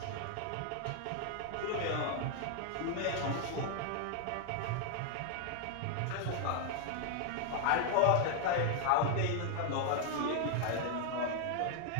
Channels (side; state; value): both; different; correlation 0.00